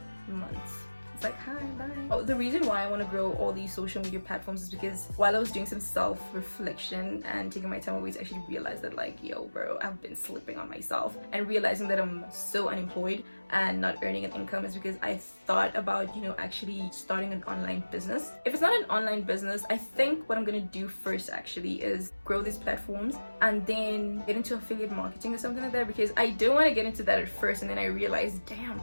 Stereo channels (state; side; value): inverted; both; correlation -1.00